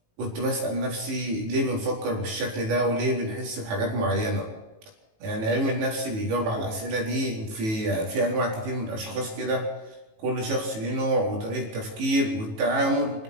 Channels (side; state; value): left; late; 18 ms